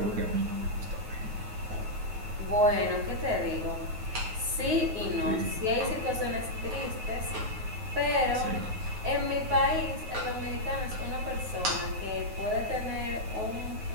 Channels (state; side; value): late; left; 9.3 ms